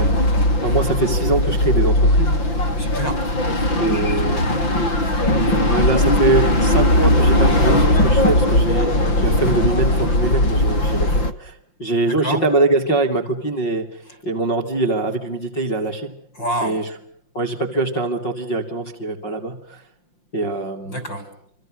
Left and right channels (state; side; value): late; right; 5.7 ms